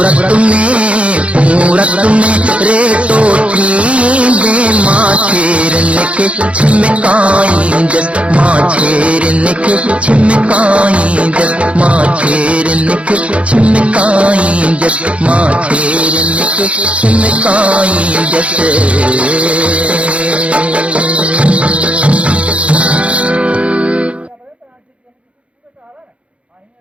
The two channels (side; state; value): left; late; 0.062 ms